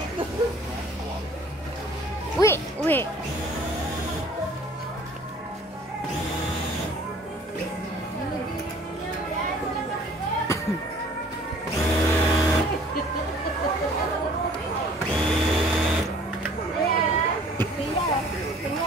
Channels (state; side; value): normal; both; correlation 0.52